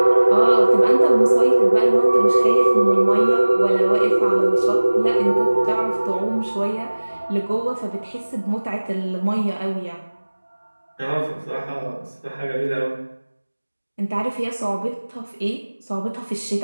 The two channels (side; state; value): both; inverted; correlation -1.00